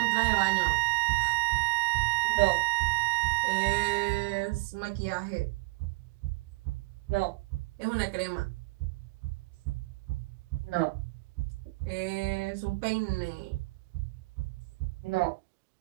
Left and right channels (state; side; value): quieter; left; 25.6 dB